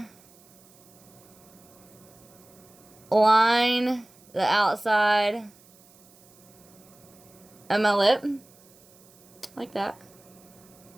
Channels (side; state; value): right; noise; hiss, 27 dB below the sound